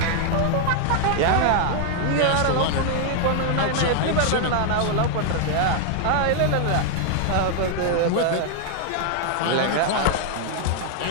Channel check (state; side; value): different; both; correlation 0.00